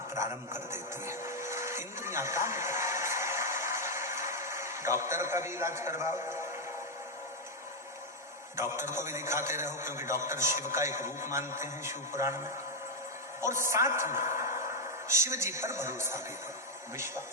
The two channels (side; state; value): both; normal; correlation 0.01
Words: प्रारंभ कर देती है। इंद्रियां काम करती है। डॉक्टर का भी इलाज करवाओ, डॉक्टर को भी दिखाते रहो, क्योंकि डॉक्टर शिव का एक रूप मानते हैं शिव पुराण में। और साथ में शिव जी पर भरोसा भी करो,